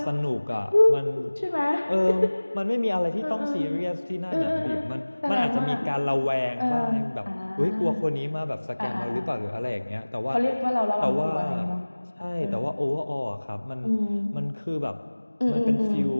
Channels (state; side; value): inverted; both; correlation -1.00